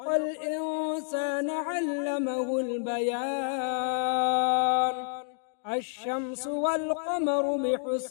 الإنسان علمه البيان. الشمس والقمر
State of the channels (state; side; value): silent; right; digital silence